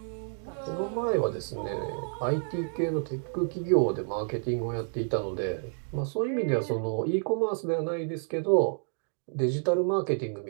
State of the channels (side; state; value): left; silent; 58 dB below the other